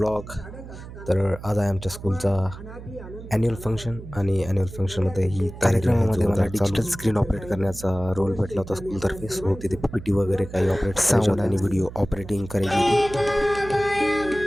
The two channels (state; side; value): noise; right; hum, 13 dB below the sound